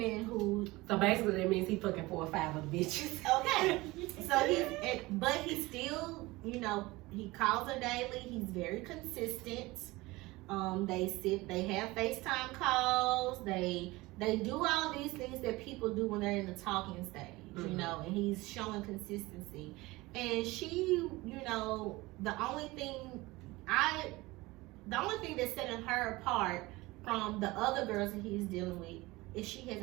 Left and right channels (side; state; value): left; quieter; 21.0 dB